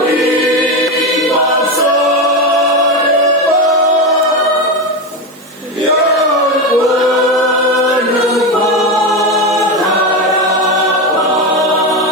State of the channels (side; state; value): both; normal; correlation 0.15